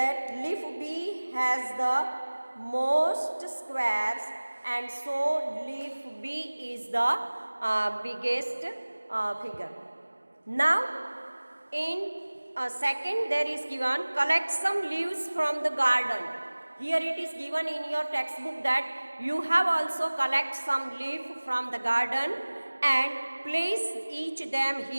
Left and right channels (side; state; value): both; inverted; correlation -1.00